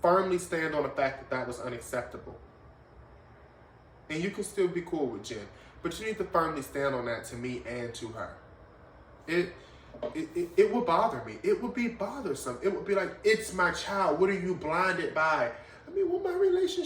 Firmly stand on the fact that that was unacceptable. And you can still be cool with Jen. But you need to firmly stand on that to me and to her. It would bother me. It would be bothersome. It would be like, it's my child. What are you blinded by? I mean, what my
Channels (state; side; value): identical; both; correlation 1.00